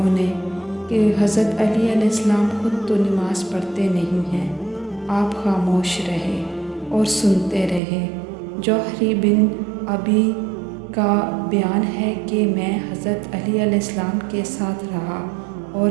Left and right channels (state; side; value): drops out; left; at 7.8 s